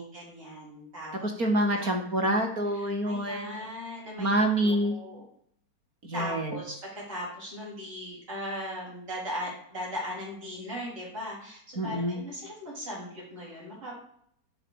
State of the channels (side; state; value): left; late; 4.3 ms